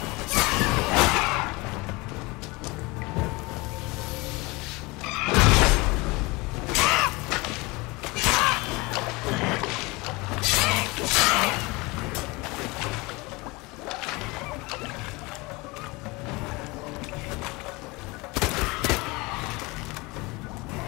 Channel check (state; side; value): quieter; right; 24.4 dB